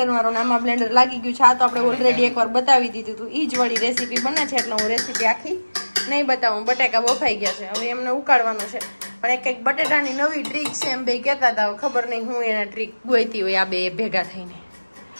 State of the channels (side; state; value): both; inverted; correlation -1.00